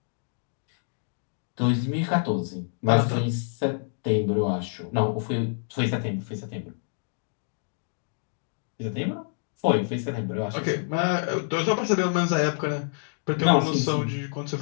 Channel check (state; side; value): silent; right; digital silence